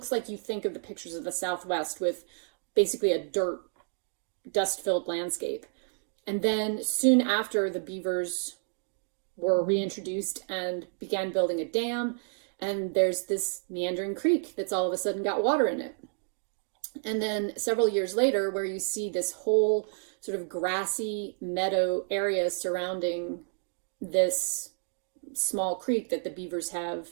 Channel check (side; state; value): left; silent; digital silence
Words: like you think of the pictures of the Southwest with basically a dust-filled landscape. And then soon after, the beavers were reintroduced and began building a dam, and there's this meandering creek that's all of a sudden got water in it. And then several years later, where you see this whole sort of grassy meadow area surrounding this small creek that the beavers have